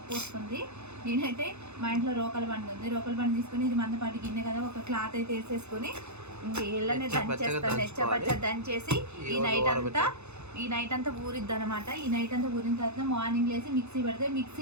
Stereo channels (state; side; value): late; left; 0.81 ms